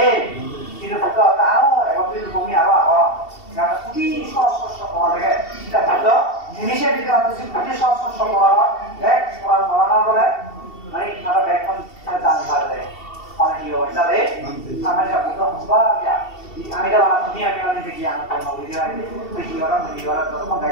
এই কিন্তু বলতে হবে আরো 31 লোক আমি আরো আগে এটা খুবই সস্ত পাওয়া যায় এটা বলতো জিনিসের ভিতরে আছে খুবই সস্ত পাওয়া এক পড়া মানা বলে মানে আরো ব্যাক কোন জান পারে মানে কি হয় তাহলে আমরা যা বলতে হবে আমি যা বানা তুমি আমি মানে দেখি আমি কোন ভিডিও আছে দেখি ওরা তখন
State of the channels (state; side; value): late; right; 2.7 ms